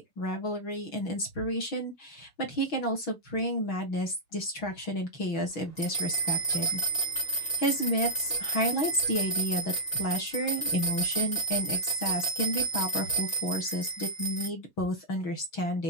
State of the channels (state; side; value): late; right; 6.2 ms